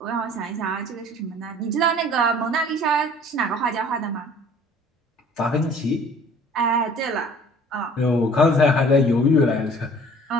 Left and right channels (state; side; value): normal; both; correlation 0.51